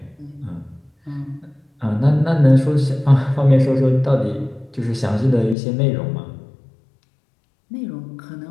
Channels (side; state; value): right; drops out; at 5.6 s